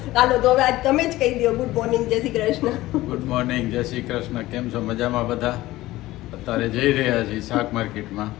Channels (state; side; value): quieter; right; 17.2 dB